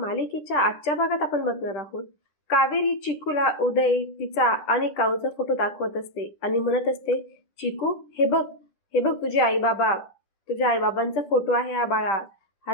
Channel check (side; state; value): right; late; 10 ms